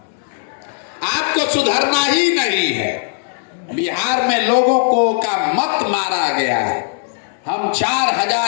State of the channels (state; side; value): silent; right; 65 dB below the other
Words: आपको सुधरना ही नहीं है। बिहार में लोगों को का मत मारा गया है। हम